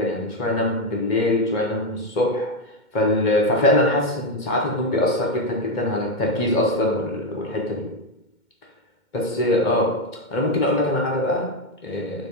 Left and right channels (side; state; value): right; late; 2.2 ms